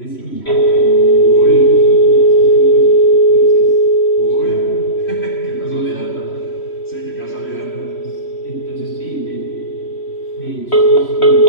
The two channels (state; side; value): late; right; 3.1 ms